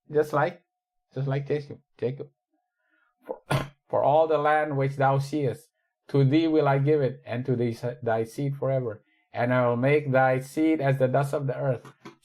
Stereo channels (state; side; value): identical; both; correlation 1.00